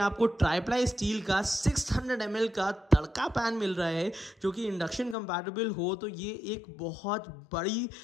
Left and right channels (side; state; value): right; drops out; at 5.2 s